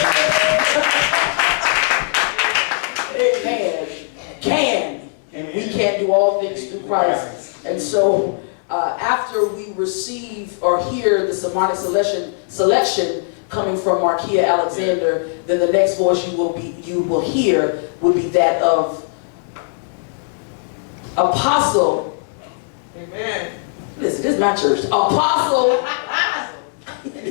Amen. And we can do all things through Christ. And so after we receive or hear the sermonic selection coming from Markia Alexander, then the next voice you will hear will be that of Apostle. Amen. Listen, this is my church. Apostle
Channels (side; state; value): right; silent; digital silence